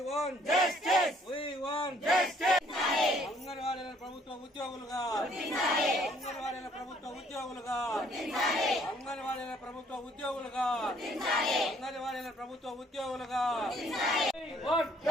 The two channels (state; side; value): normal; both; correlation 0.62